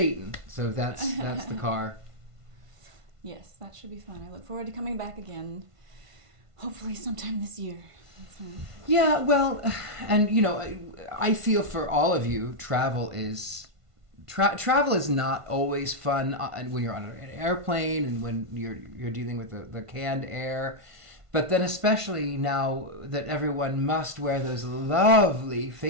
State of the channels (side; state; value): left; late; 1.5 ms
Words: So that's the car. Yes, that should be fun. I look forward to coming back again. Hopefully sometime this year. Yeah, well, and I feel for all of you, travel is not always fun when you're on an airplane and when you're dealing with the canned air. But then especially now that everyone must wear those lovely